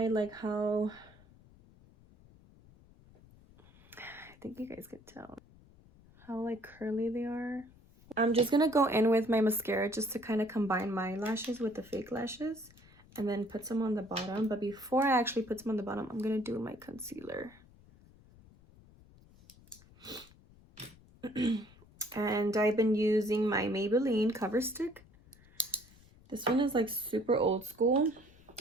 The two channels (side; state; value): left; noise; rumble, 25 dB below the sound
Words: like how, I think you guys can tell how like curly they are. I'm just gonna go in with my mascara just to kind of combine my lashes with the fake lashes, and then put some on the bottom. But before I actually put some on the bottom, I'm gonna do my concealer. And I've been using my Maybelline Cover Stick. This one is like super old school,